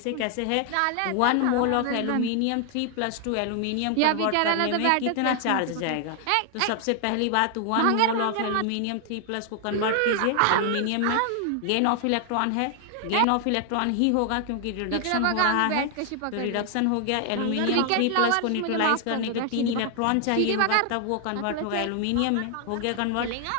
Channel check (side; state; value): both; different; correlation 0.00